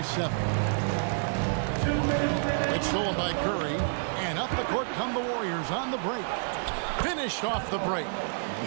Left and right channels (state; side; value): silent; left; digital silence